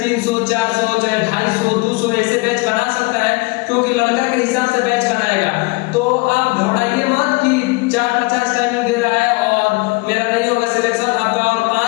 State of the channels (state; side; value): quieter; right; 26.8 dB